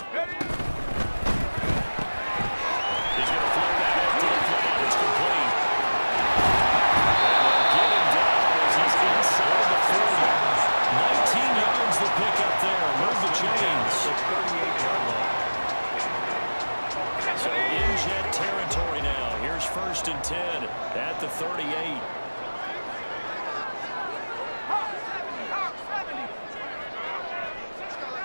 And 10 at the 38.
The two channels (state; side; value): inverted; both; correlation -1.00